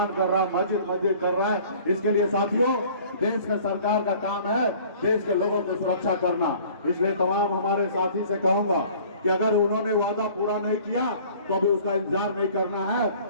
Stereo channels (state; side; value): inverted; both; correlation -0.50